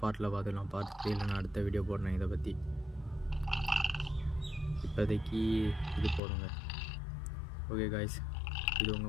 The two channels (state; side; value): drops out; right; at 6.2 s